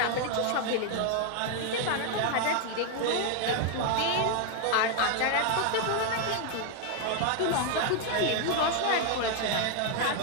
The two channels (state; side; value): different; both; correlation 0.00